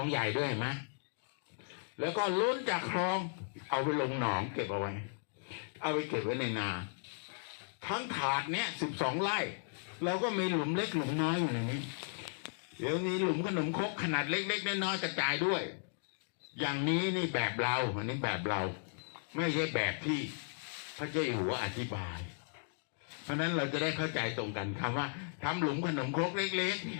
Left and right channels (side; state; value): right; silent; digital silence